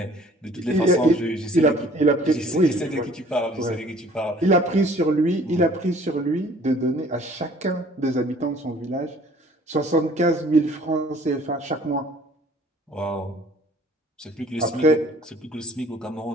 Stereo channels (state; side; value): normal; both; correlation 0.54